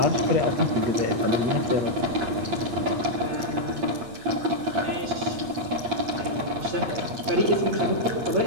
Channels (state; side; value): late; left; 8.7 ms